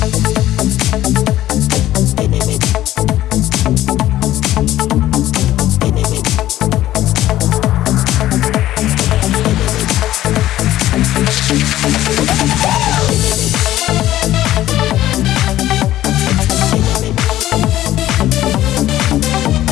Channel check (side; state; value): right; quieter; 14.1 dB